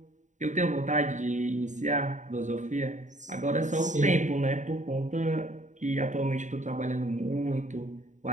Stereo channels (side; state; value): left; late; 0.36 ms